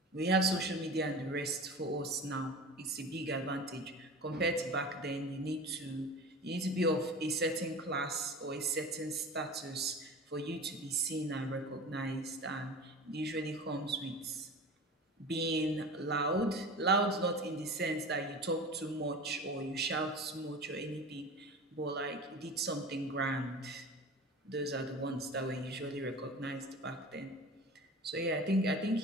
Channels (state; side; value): normal; both; correlation 0.35